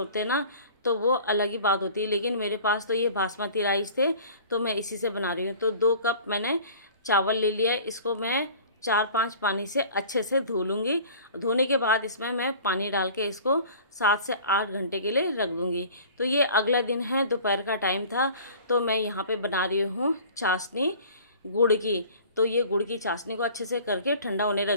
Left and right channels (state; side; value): inverted; both; correlation -0.45